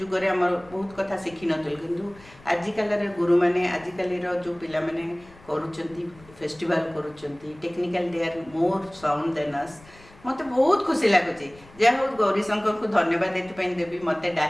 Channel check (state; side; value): noise; left; rumble, 24 dB below the sound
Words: हमर बहुत कथा शिखि नथिल किंतु आजिकल रे गुरु माने आजिकल रो जो पिला माने करूचंती फेस्टिवल करूचंती technical they are more sound than us मते बहुत खुशी लागुची जे हो गौरी शंकर को धन्यवाद देते पई देबी मते